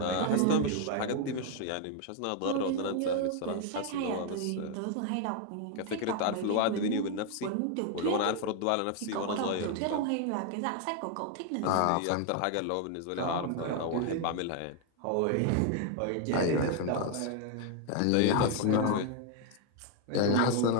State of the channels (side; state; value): both; different; correlation 0.00